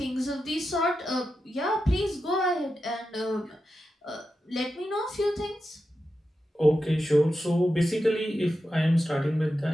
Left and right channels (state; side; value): normal; both; correlation 0.90